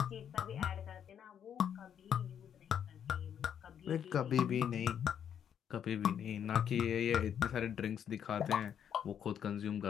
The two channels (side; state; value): right; quieter; 8.7 dB